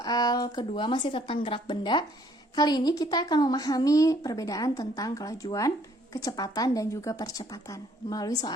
kedua masih tentang gerak benda. Kali ini kita akan memahami perbedaan tentang kelajuan, kecepatan, dan juga percepatan melalui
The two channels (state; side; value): normal; both; correlation 0.63